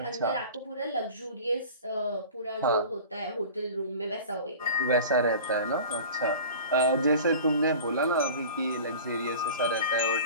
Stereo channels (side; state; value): both; inverted; correlation -0.39